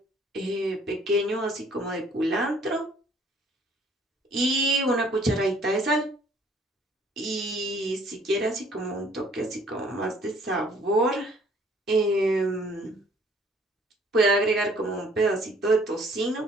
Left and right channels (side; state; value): both; normal; correlation 0.59